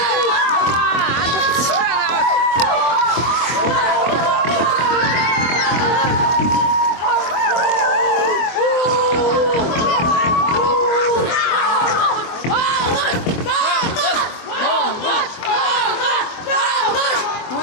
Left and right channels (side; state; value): right; late; 24 ms